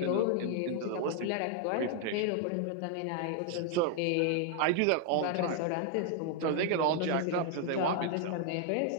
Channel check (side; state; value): both; different; correlation 0.00